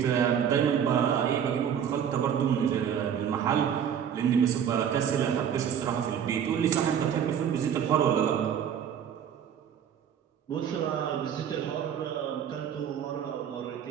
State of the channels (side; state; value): left; quieter; 8.6 dB